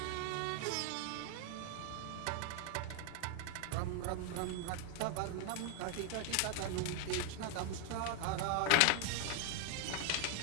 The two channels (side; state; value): both; different; correlation 0.00